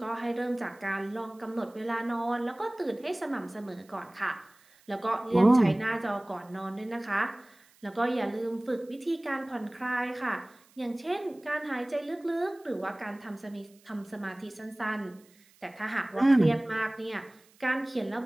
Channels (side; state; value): right; noise; hiss, 29 dB below the sound